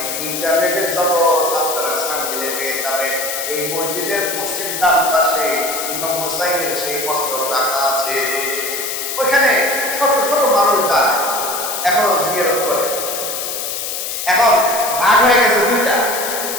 ইন্টারনেটের জগৎ আপনারা সামনে পেয়ে যাবেন। এই মসজিদের পশ্চিম ডান পাশে ইমাম হুসাইনের সেই মস্তক রাখা আছে। ওইখানে শত শত মানুষ যায়, এখনো জিয়ারত করে। এখন ভাগ হয়ে গেছে দুইটা,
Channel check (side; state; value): left; noise; hiss, 4 dB below the sound